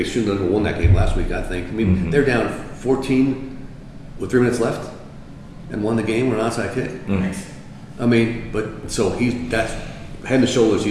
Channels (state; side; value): identical; both; correlation 1.00